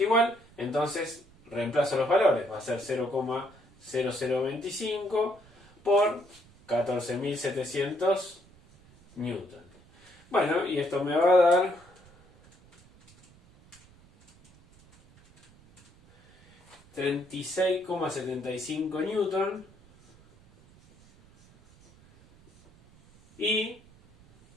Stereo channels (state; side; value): noise; right; rumble, 27 dB below the sound